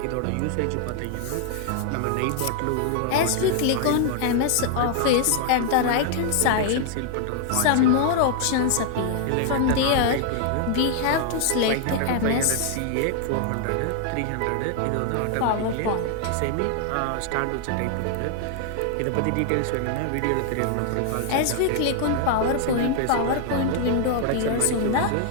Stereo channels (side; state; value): both; different; correlation 0.00